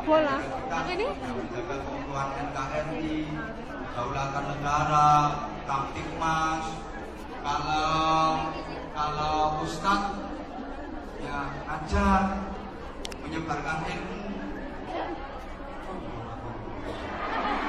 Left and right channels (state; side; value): identical; both; correlation 1.00